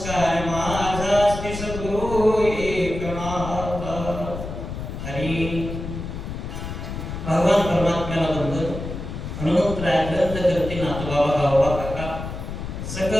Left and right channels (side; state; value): left; noise; rumble, 7 dB below the sound